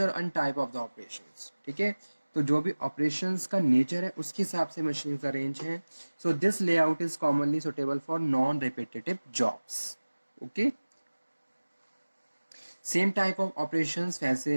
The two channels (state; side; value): inverted; both; correlation -1.00